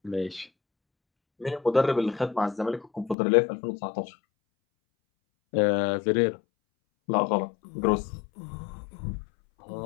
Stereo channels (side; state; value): right; drops out; at 3.2 s